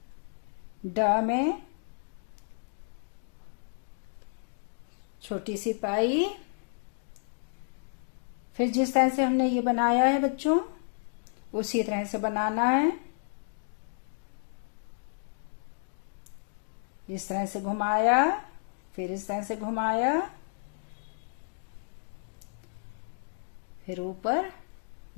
ड में छोटी सी पाई, फिर जिस तरह से हमने ये बनाया है बच्चों उसी तरह से बनाना है, इस तरह से घुमाया, फिर इस तरह से घुमाया, फिर ऊपर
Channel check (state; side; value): silent; right; digital silence